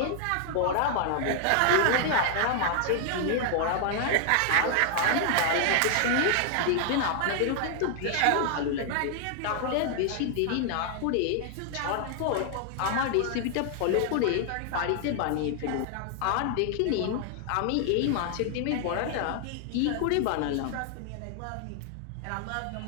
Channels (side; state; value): both; different; correlation 0.00